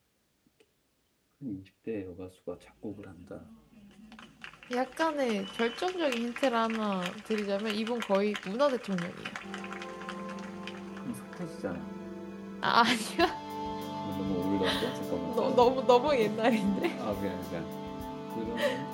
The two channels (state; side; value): identical; both; correlation 1.00